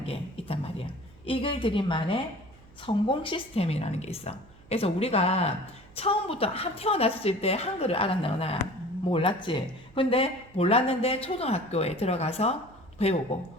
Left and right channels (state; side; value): noise; right; hum, 24 dB below the sound